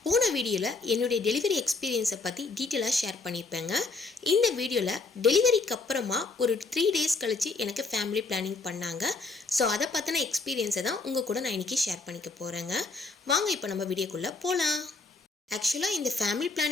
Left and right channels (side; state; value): right; quieter; 3.8 dB